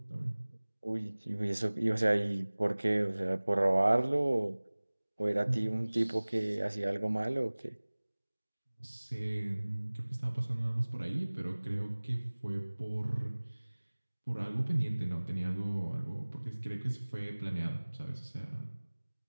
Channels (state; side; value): inverted; both; correlation -1.00